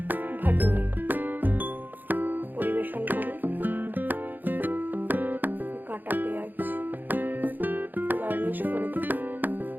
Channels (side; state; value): left; late; 0.088 ms